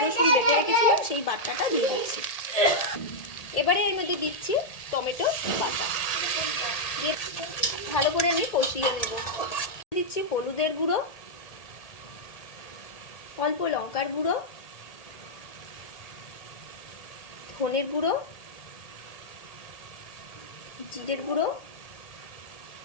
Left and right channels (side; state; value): right; late; 1.8 ms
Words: বেটে রেখেছিলাম, সেই বাটাটা দিয়ে দিচ্ছি। এবারে এর মধ্যে দিচ্ছি টমেটো বাটা, দিয়ে ভালো করে আমি কষিয়ে নেব। দিচ্ছি হলুদের গুঁড়ো, অল্প লঙ্কার গুঁড়ো, ধনের গুঁড়ো, জিরের গুঁড়ো,